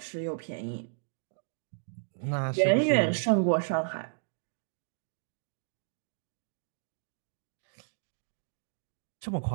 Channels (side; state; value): left; silent; digital silence